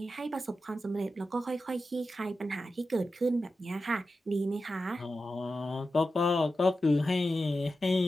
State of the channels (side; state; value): both; normal; correlation 0.91